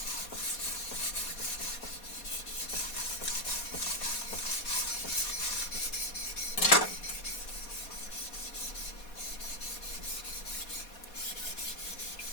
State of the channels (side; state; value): right; late; 4.2 ms